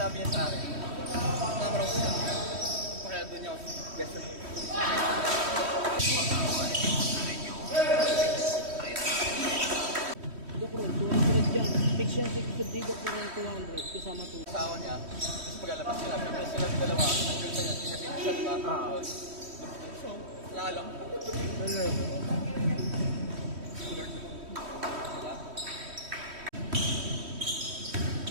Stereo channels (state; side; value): late; left; 3.1 ms